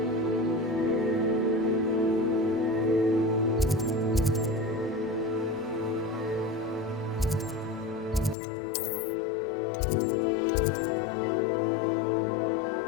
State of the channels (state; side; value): drops out; right; at 8.3 s